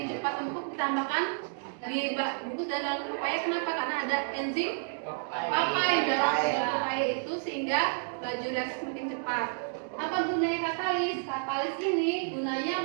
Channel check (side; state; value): left; silent; digital silence